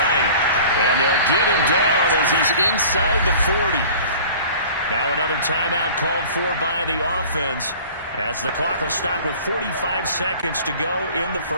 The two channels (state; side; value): inverted; both; correlation -0.44